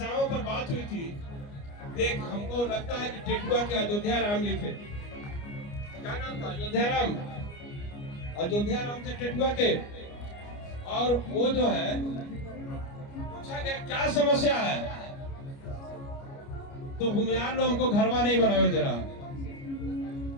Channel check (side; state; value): right; late; 29 ms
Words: पर बात हुई थी। एक हमको लगता है कि टेटुआ के अयोध्या राम जी थे, क्या नाम था? अयोध्या राम थे टेटुआ के। और वो जो है पूछा गया क्या समस्या है, तो भूमिहार लोग हमको घरवा नहीं बनावे दे रहा।